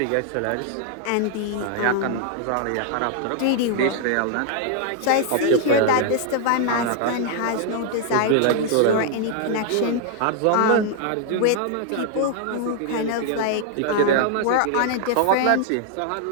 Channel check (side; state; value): both; different; correlation 0.00